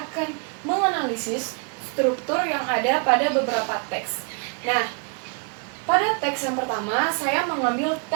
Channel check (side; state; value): left; quieter; 39.3 dB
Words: menganalisis struktur yang ada pada beberapa teks. Nah, pada teks yang pertama, saya mengambil